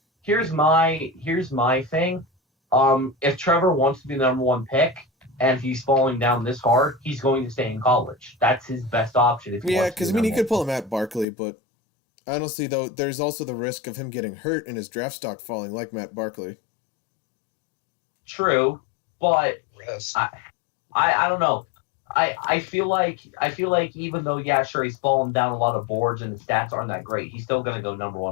Here's my thing. If Trevor wants to be the number 1 pick and he's falling down this hard, he's going to stay in college. That's his best option. If he Yeah, wants to because be he number could pull a Matt Barkley, but honestly, though, there's also the risk of him getting hurt and his draft stock falling, like Matt Barkley. 1. True, but Yes. I don't know. I feel like even though sure he's fallen down a lot of boards and his stats aren't that great, he's still going to go number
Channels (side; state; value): right; drops out; at 11.2 s